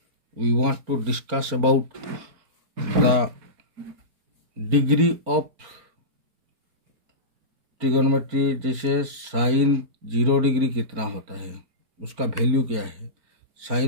we want to discuss about the degree of trigonometry. जैसे sign 0 degree कितना होता है, उसका वैल्यू क्या है,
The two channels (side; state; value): left; late; 4.3 ms